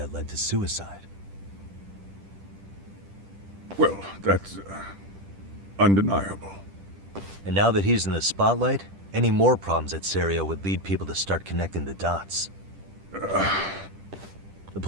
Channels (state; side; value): late; left; 10 ms